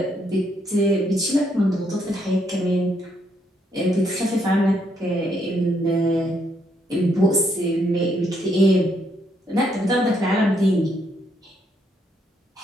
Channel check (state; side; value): normal; both; correlation 0.74